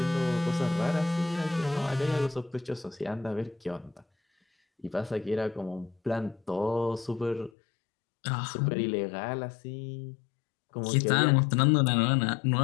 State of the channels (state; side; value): drops out; right; at 7.5 s